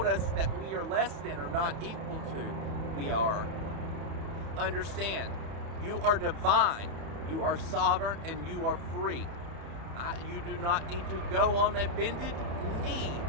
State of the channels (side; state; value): left; late; 30 ms